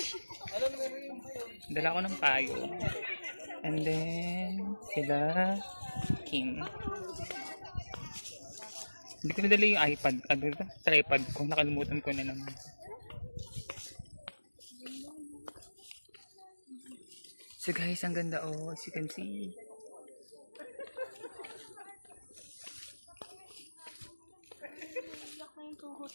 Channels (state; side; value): inverted; both; correlation -1.00